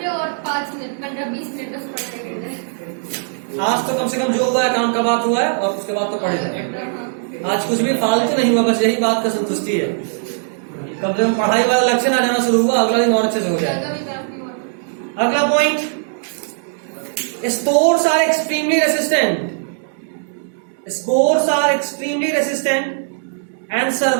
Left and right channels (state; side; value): silent; left; digital silence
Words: और 5 मिनट 15-20 मिनट बस पढ़ते गए। आज तो कम से कम जो हुआ है काम का बात हुआ है, और उसके बाद तो पढ़े। आज कुछ भी फालतू नहीं हुआ, बस यही बात का संतुष्टि है। कम से कम पढ़ाई वाला लक्ष्य ना जाना शुरू हुआ, अगला दिन और अच्छे से हो जाए। अगला point, spores are extremely resistant, spores are extremely resistant and